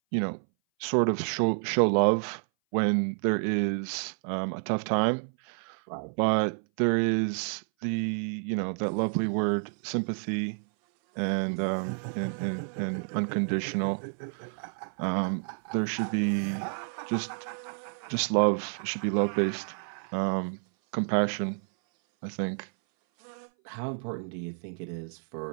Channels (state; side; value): silent; left; 58 dB below the other